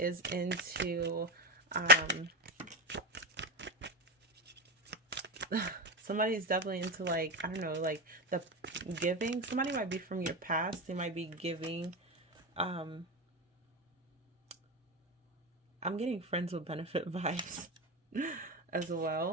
into somebody's definitely into, like, I don't know, like the giving. Somebody might be from your past. They might be giving. I'm getting friends with benefit vibes as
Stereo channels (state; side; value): normal; both; correlation 0.18